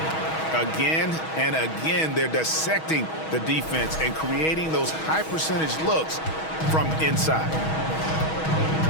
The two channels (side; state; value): right; late; 6.3 ms